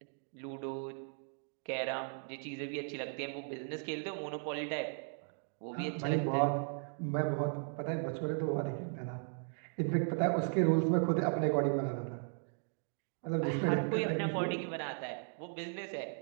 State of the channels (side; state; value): left; silent; 53 dB below the other